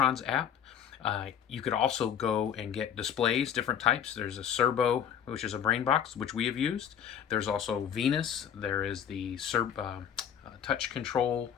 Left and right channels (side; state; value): right; quieter; 8.9 dB